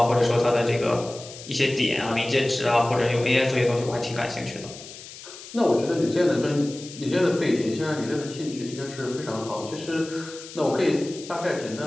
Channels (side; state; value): left; noise; hiss, 15 dB below the sound